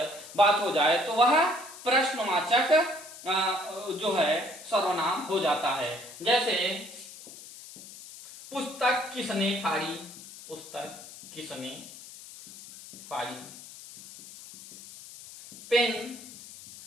हो जाए, तो वह प्रश्नवाचक जो है सर्वनाम हो जाता है। जैसे पुस्तक किसने फाड़ी, पुस्तक किसने फाड़ी, पेन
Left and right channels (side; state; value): left; noise; hiss, 16 dB below the sound